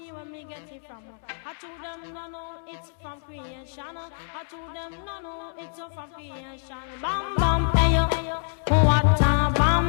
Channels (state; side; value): silent; right; 61 dB below the other